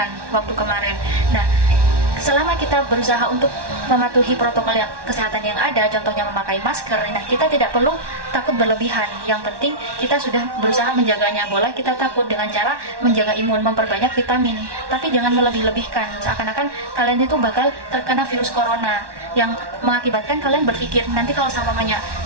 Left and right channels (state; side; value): late; left; 1.1 ms